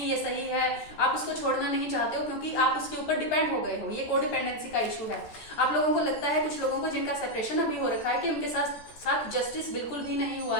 ये सही है, आप उसको छोड़ना नहीं चाहते हो क्योंकि आप उसके ऊपर डिपेंड हो गए हो। ये कोडिपेंडेंसी का इशू है। आप लोगों को लगता है, कुछ लोगों को जिनका सेपरेशन अभी हो रखा है, कि उनके साथ जस्टिस बिल्कुल भी नहीं हुआ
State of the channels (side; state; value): right; late; 14 ms